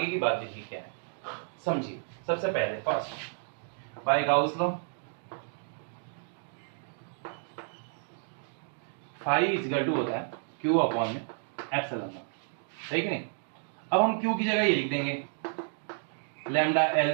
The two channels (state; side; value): silent; left; digital silence